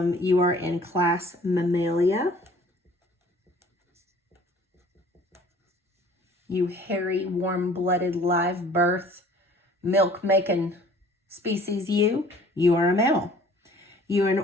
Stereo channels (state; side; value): normal; both; correlation 0.52